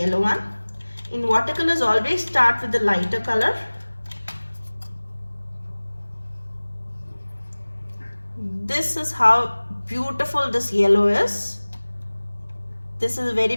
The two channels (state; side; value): inverted; both; correlation -1.00